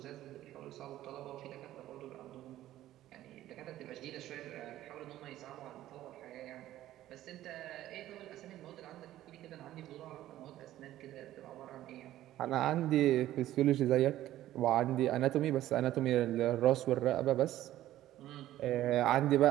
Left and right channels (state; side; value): quieter; left; 13.9 dB